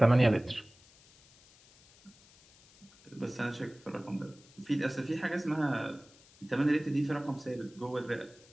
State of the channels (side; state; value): left; noise; hiss, 26 dB below the sound